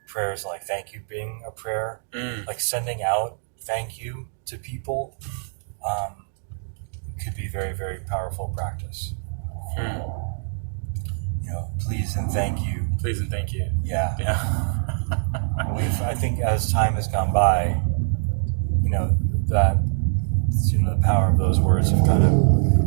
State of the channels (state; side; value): silent; left; digital silence